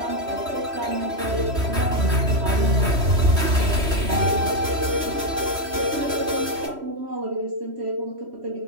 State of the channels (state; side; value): late; left; 3.1 ms